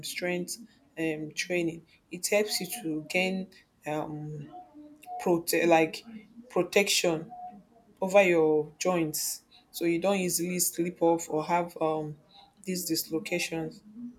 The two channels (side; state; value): both; identical; correlation 1.00